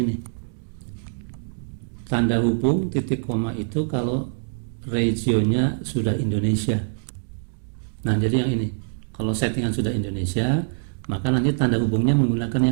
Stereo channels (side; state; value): left; silent; digital silence